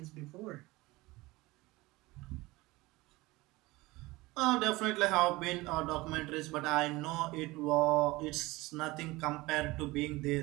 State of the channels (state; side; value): quieter; left; 21.0 dB